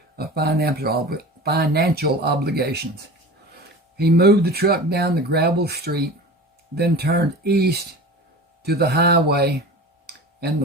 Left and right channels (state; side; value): normal; both; correlation 0.35